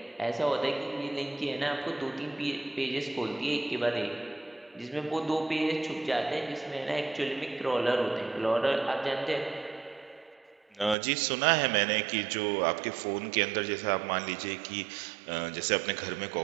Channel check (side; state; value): left; drops out; at 11.0 s